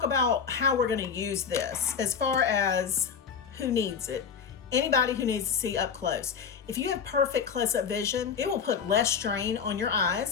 about how we're going to use this as far as who needs it. Anybody who needs to see up close. If you have perfect close-up vision, it will put less strain on your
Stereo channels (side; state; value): right; quieter; 6.6 dB